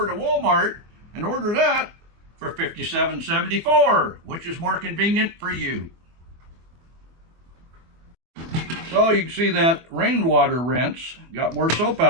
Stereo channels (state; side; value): late; left; 24 ms